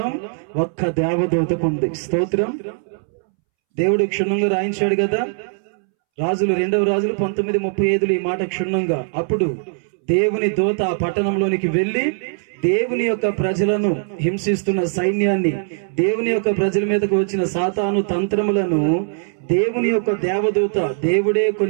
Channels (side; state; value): left; silent; 66 dB below the other